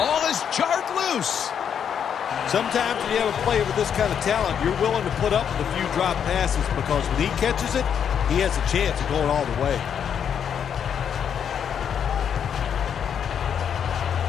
is jarred loose. Sometimes when you have a player with this kind of talent, you're willing to put up with a few drop passes because when he catches it, he has a chance of going all the way.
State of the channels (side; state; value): right; quieter; 8.1 dB